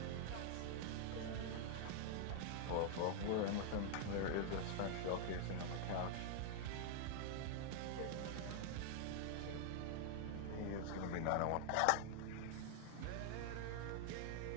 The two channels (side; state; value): both; different; correlation 0.00